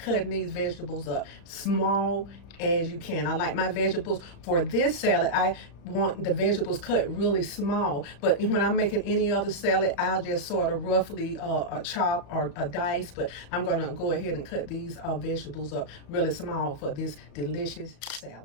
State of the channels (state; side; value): late; right; 35 ms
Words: these vegetables up small as you can. I like my vegetables for this salad. I want the vegetables cut really small, but when I'm making any other salad, I'll just sort of roughly chop or dice, but I'm going to go ahead and cut these vegetables up really small for this delicious